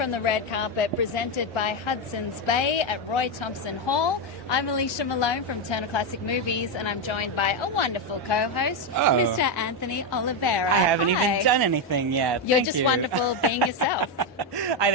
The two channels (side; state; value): both; normal; correlation 0.06